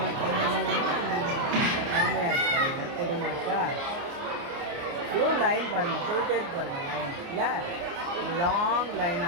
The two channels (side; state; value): left; late; 29 ms